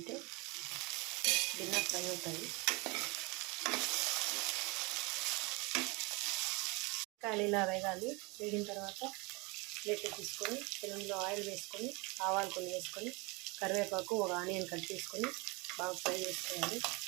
భిన్న ఫ్రై అవుతాయి. కాయలు ఇలా వేగాలి. వేగిన తర్వాత ప్లేట్ తీసుకొని పెనంలో ఆయిల్ వేసుకొని ఆవాలు కొన్ని వేసుకొని కరివేపాకు ఒక ఆనియన్ కట్ చేసుకొని బాగా ఫ్రై చేసుకోవాలి.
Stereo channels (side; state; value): left; quieter; 27.6 dB